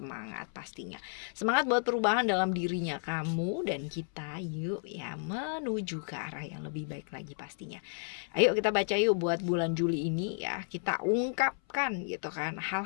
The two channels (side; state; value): right; silent; 56 dB below the other